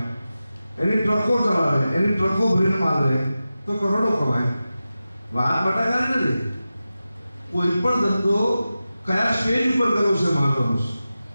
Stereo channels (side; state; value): both; inverted; correlation -0.94